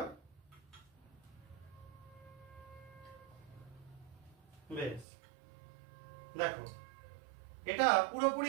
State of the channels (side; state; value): left; drops out; at 5.1 s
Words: বেশ। দেখো এটা